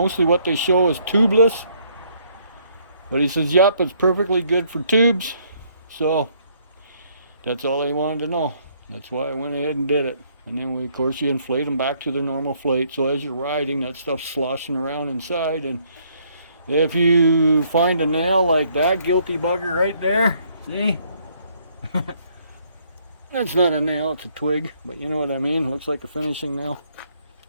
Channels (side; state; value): both; inverted; correlation -0.67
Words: what they show is tubeless. But he says, yep, it's perfectly good for tubes. So that's all they wanted to know. That's why I went ahead and did it. And then, of course, you inflate them back to their normal flate. So as you're riding, that stuff's sloshing around inside. And if you find a nail like that guilty bugger right there, see? That's not a nail, it's a twig, but you know what I mean. Looks like a finishing nail.